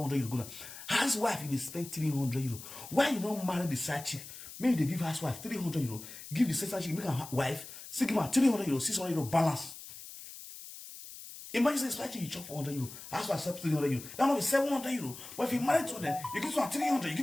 euro go down. Housewife, you spend 300 euro. Why you don't marry the side chick? Maybe they give housewife 300 euro. Give the side chick, make her wife, still give her 300 euro, 600 euro balance. Imagine the side chick you chop 400 euro. Housewife sell 300 euro. That might be 700 euro. But if you marry to them, you give them 300, you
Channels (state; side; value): noise; left; hiss, 13 dB below the sound